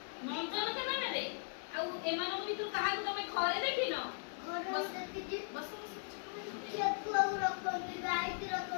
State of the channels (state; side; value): silent; right; digital silence